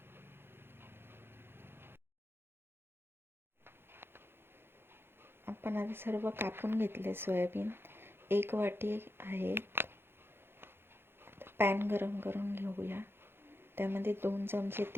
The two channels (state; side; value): late; left; 0.11 ms